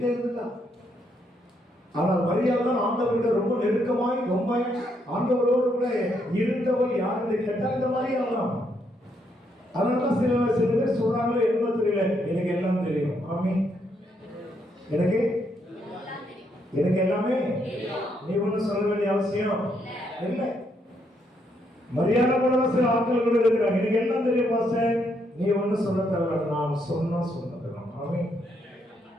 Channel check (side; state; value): both; normal; correlation 0.75